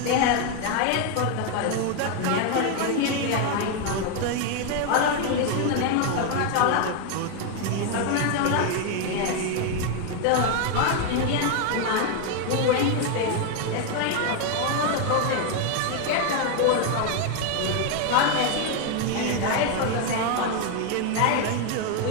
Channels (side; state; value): both; different; correlation 0.01